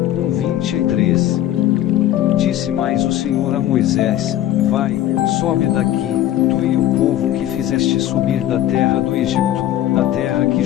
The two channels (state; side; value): quieter; right; 12.7 dB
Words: 23. Disse mais o Senhor a Moisés: vai, sobe daqui, tu e o povo que fizeste subir da terra do Egito, a terra que